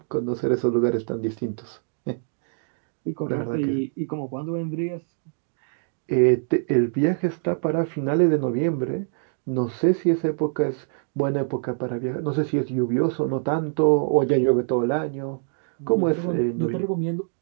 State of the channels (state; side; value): silent; left; digital silence